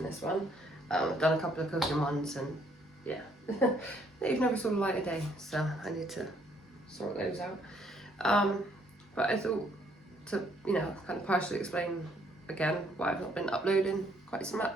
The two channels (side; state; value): both; normal; correlation 0.67